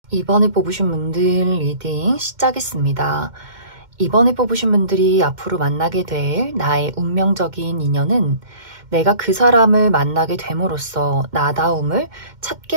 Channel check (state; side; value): late; left; 2.1 ms